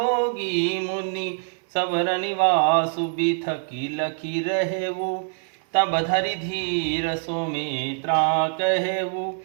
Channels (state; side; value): silent; left; 62 dB below the other